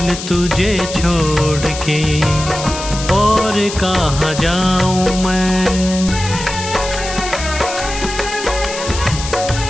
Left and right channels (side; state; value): left; noise; hiss, 9 dB below the sound